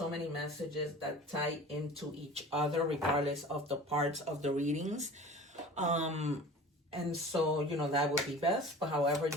many messages that tie into each other regardless of the parts of the readings. And so, you know, that would be best, but however,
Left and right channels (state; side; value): normal; both; correlation 0.40